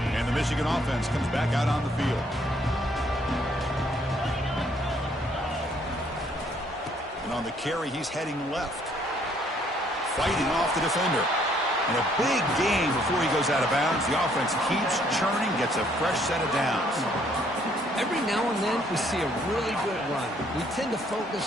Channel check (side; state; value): both; normal; correlation 0.65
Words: And the Michigan offense comes back out on the field. And on the carry, he's heading left. Fighting off the defender. And a big game before he goes out of bounds. The offense keeps churning, gets a fresh set of downs. Every now and then we see a really good run. We tend to